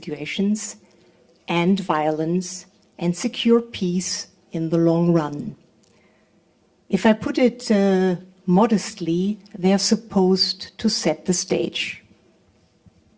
and violence and secure peace in the long run. If I put it modestly, they are supposed to set the stage.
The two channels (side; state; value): both; identical; correlation 1.00